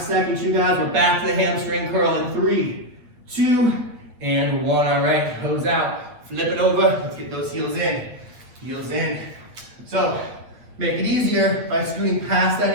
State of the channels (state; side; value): late; left; 8.4 ms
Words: seconds, you guys. We're back to the hamstring curl in 3, 2, and 1. All right, hose out. Flip it over. Let's get those heels in. Heels in. So, make it easier by scooting past